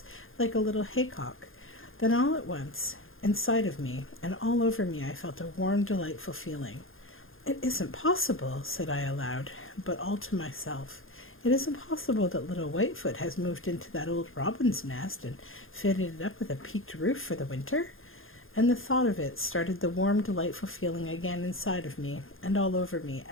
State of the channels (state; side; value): late; right; 0.60 ms